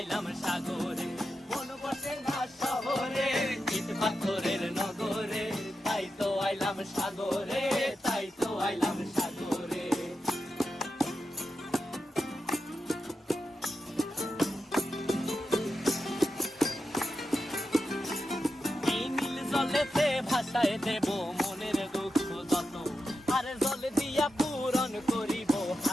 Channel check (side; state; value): both; normal; correlation 0.88